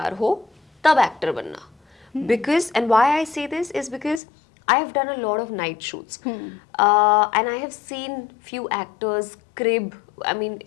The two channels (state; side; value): drops out; right; at 4.2 s